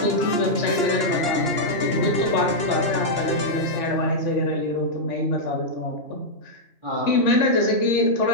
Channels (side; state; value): right; late; 2.9 ms